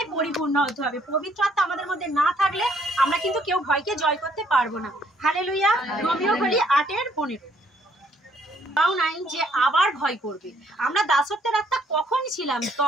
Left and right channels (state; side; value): normal; both; correlation 0.66